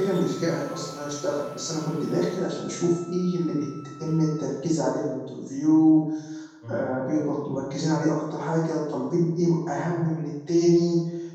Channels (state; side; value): identical; both; correlation 1.00